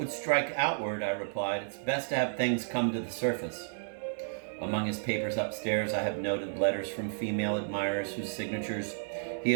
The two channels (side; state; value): left; silent; digital silence